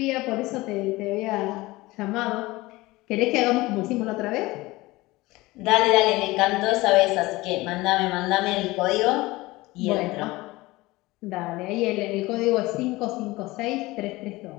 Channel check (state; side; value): quieter; right; 20.4 dB